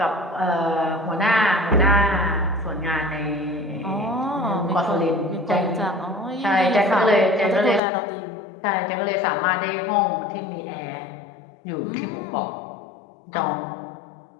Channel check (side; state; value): right; drops out; at 7.8 s